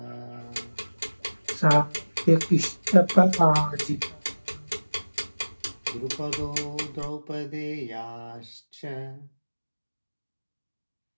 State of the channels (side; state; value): both; inverted; correlation -1.00